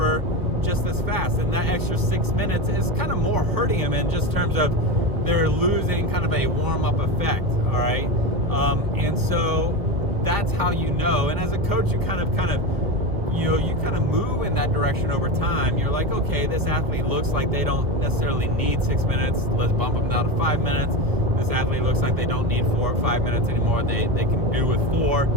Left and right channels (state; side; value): late; left; 1.2 ms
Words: just as fast. And that extra 6 minutes is kind of more hurting them in just terms of they're losing kind of a warm-up effect, all right? And so that's how you know. And as a coach, you kind of move in that direction over time. You're like, okay, this athlete looks like they don't necessarily need 6 minutes. Let's bump them down to 5 minutes. This athlete looks like they don't need 4 or 5 minutes anymore. They can do with 4.